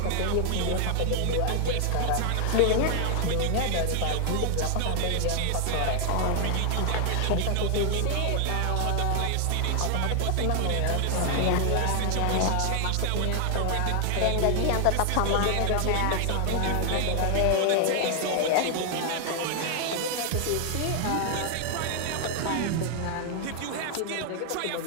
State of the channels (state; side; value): different; both; correlation 0.00